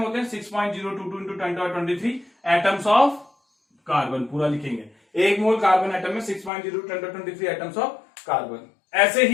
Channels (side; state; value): right; drops out; at 6.5 s